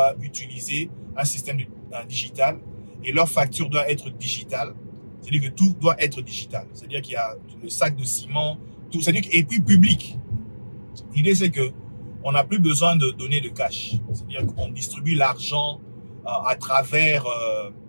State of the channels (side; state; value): both; inverted; correlation -1.00